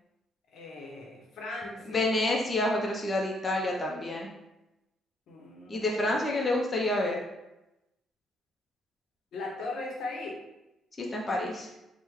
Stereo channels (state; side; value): normal; both; correlation 0.70